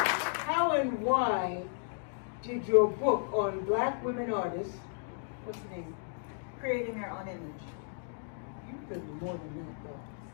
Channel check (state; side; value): silent; right; digital silence